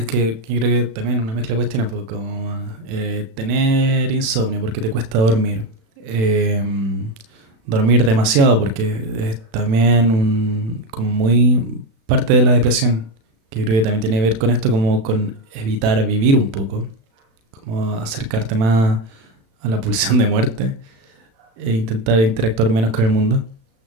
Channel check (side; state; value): left; late; 36 ms